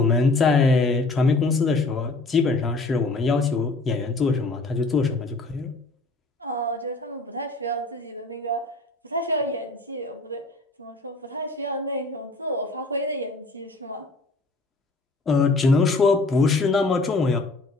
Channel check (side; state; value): right; quieter; 3.3 dB